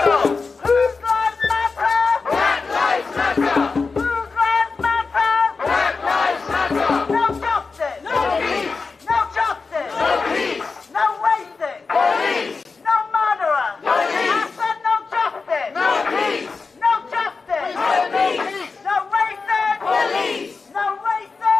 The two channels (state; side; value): quieter; right; 4.5 dB